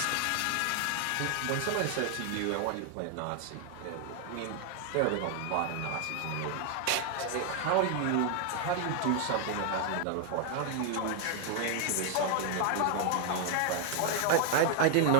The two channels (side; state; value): both; different; correlation 0.00